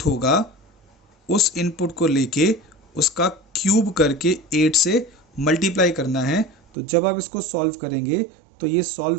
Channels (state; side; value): drops out; left; at 6.6 s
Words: होगा उस इनपुट को लेके उसका क्यूब करके 8 से मल्टीप्लाई करना है। तो जब आप इसको सॉल्व करेंगे तो ये सॉल्व